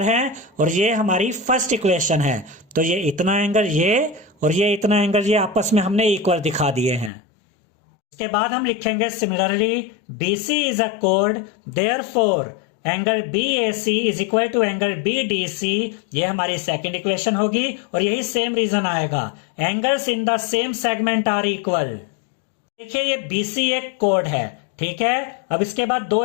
हैं। और ये हमारी फर्स्ट इक्वेशन है। तो ये इतना एंगल ये और ये इतना एंगल ये आपस में हमने इक्वल दिखा दिए हैं। इसके बाद हम लिखेंगे सिमिलरली BC इज अ कोड, therefore angle BAC is equal to angle BDC, ये हमारी सेकंड इक्वेशन होगी। और यही सेम रीजन आएगा, angles in the same segment are equal. देखिए ये BC एक कोड है, ठीक है। अब इसके बाद दो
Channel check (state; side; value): drops out; right; at 7.1 s